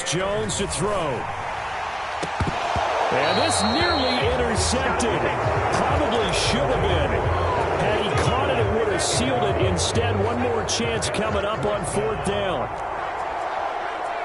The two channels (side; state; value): both; identical; correlation 1.00